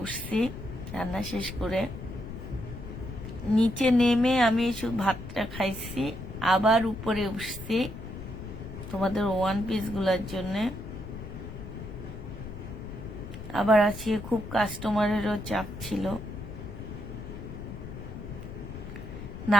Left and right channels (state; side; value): noise; left; rumble, 10 dB below the sound